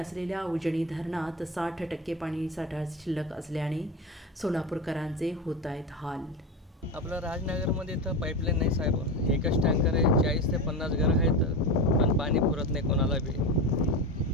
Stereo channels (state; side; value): normal; both; correlation 0.22